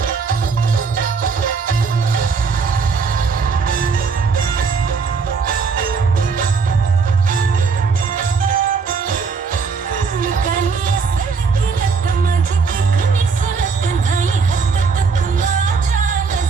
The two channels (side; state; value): left; quieter; 5.1 dB